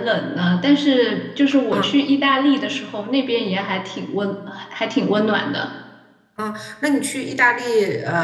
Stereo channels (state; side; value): identical; both; correlation 1.00